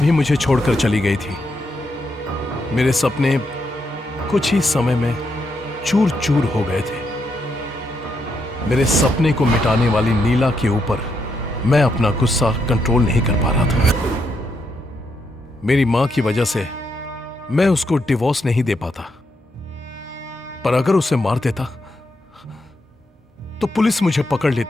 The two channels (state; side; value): normal; both; correlation 0.80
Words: मुझे छोड़कर चली गई थी। मेरे सपने कुछ ही समय में चूर चूर हो गए थे। मेरे सपने को मिटाने वाली नीला के ऊपर मैं अपना गुस्सा कंट्रोल नहीं कर पा रहा था। मेरी मां की वजह से मैं उसको डिवोर्स नहीं दे पाता, पर अगर उसे मार देता तो पुलिस मुझे पकड़